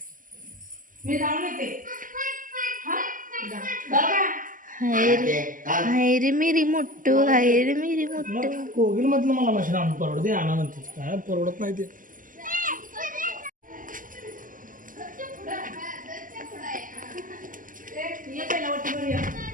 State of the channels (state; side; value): late; left; 0.39 ms